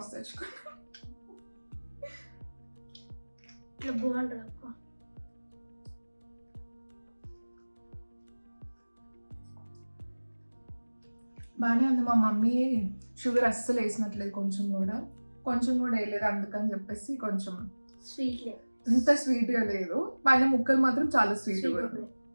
తెచ్చుకున్నాం. బాగుంటుంది అక్క. బాగానే ఉంది. మా మమ్మీ షుగర్ అస్సలు వేసినట్లేదు, కొంచెం కూడా వేయలేదు. అందుకని చెప్పేసి కొంచెం స్వీట్ లేదు, ఇంత స్వీట్గా లేదు. పైన ముక్కలు మాత్రం చాలా స్వీట్గా ఉంది.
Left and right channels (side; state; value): both; inverted; correlation -1.00